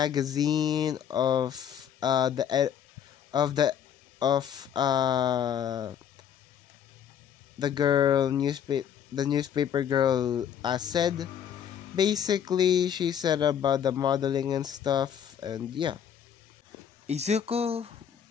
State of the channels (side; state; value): right; quieter; 8.7 dB